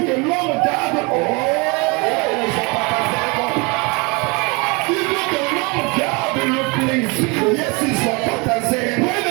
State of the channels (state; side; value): quieter; left; 28.9 dB